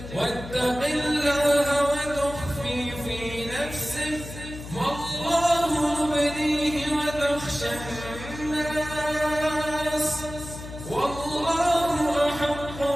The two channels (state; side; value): noise; left; hum, 12 dB below the sound